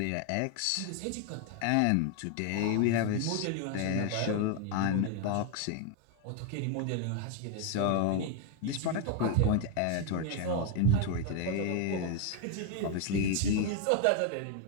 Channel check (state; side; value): different; both; correlation 0.01